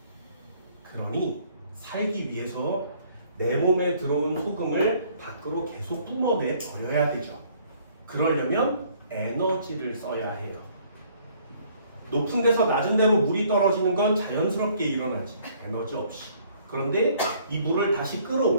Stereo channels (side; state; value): both; inverted; correlation -0.61